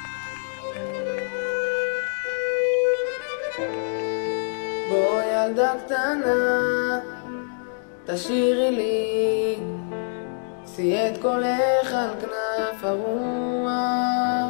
בוא ילדה קטנה, תשאירי לי, שאי את קולך על כנף הרוח.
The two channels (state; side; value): silent; right; digital silence